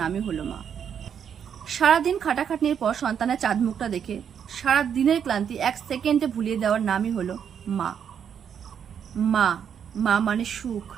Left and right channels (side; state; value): left; quieter; 8.0 dB